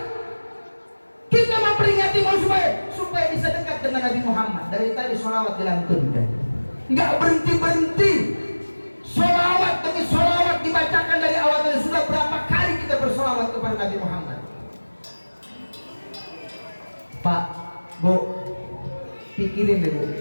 Kita memperingati supaya supaya bisa dekat dengan Nabi Muhammad. Dari tadi sholawat dilantunkan, nggak berhenti-berhenti. Sholawat demi sholawat dibacakan dari awal. Dan sudah berapa kali kita bersolawat kepada Nabi Muhammad. Pak, Bu, pikirin deh Bu,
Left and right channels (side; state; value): both; inverted; correlation -1.00